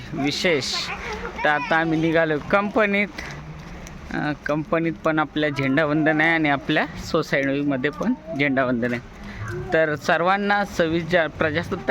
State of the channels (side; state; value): both; identical; correlation 1.00